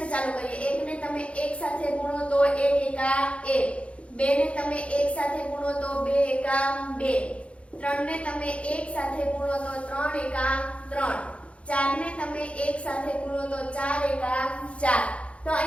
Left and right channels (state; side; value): late; right; 0.061 ms